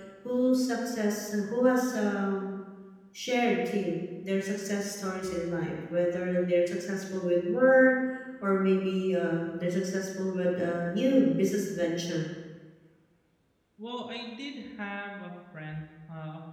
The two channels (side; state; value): both; identical; correlation 1.00